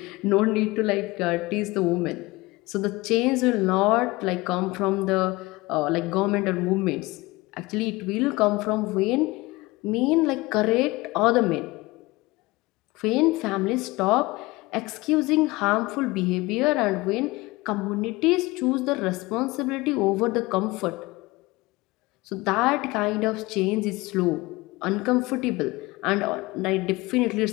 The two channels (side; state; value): right; quieter; 21.7 dB